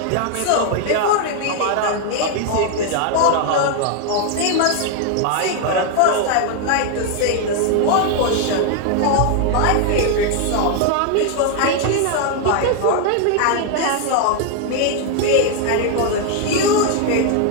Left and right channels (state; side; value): different; both; correlation 0.00